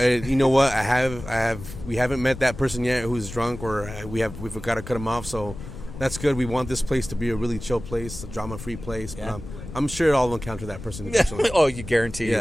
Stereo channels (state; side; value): noise; left; rumble, 12 dB below the sound